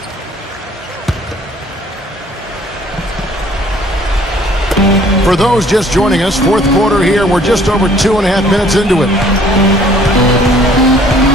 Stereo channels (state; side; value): normal; both; correlation 0.57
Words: For those just joining us, fourth quarter here. We're just over 2.5 minutes into it.